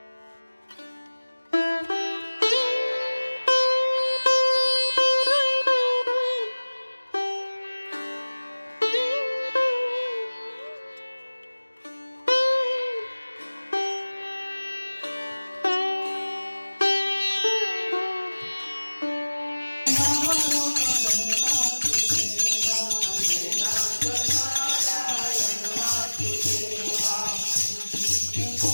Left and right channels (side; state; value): both; inverted; correlation -1.00